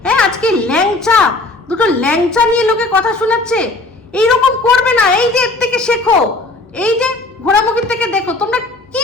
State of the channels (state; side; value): quieter; right; 3.2 dB